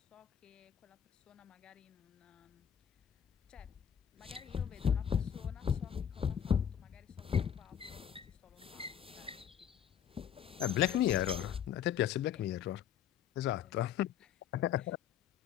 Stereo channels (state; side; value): quieter; right; 9.2 dB